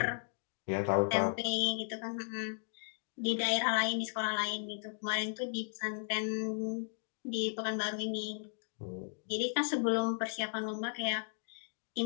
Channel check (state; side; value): silent; right; digital silence